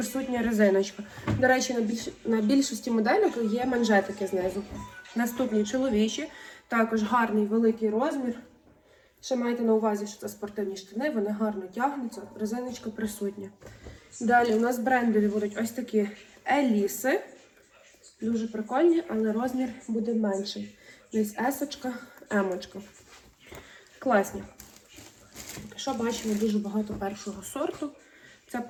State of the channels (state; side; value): identical; both; correlation 1.00